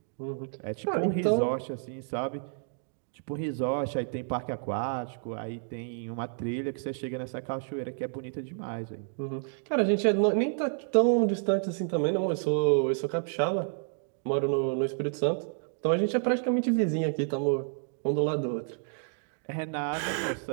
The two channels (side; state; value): left; silent; digital silence